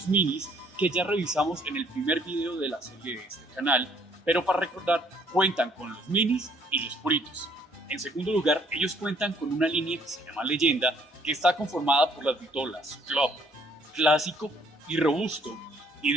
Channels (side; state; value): both; normal; correlation 0.63